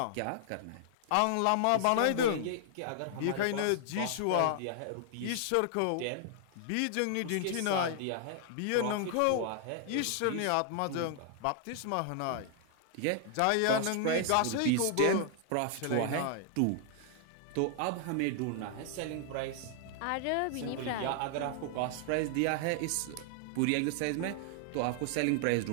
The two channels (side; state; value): both; different; correlation 0.00